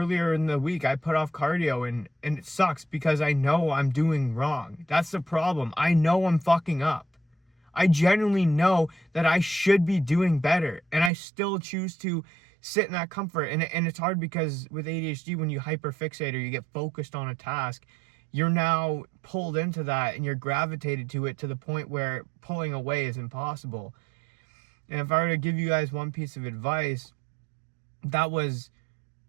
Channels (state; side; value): drops out; left; at 11.1 s